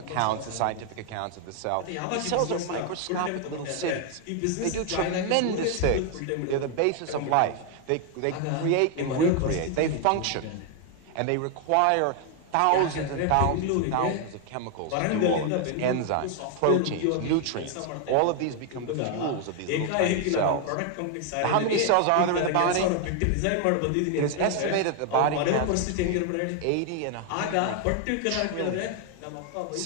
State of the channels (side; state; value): both; different; correlation 0.00